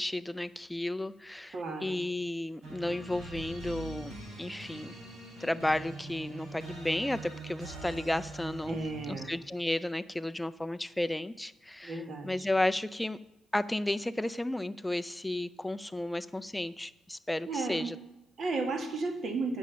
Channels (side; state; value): both; normal; correlation 0.93